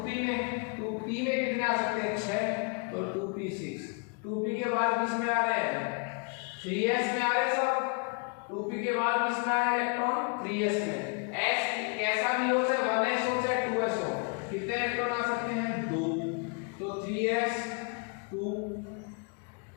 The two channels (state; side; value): quieter; right; 35.9 dB